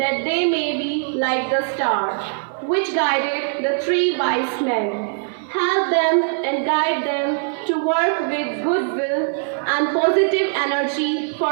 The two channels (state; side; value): silent; left; 62 dB below the other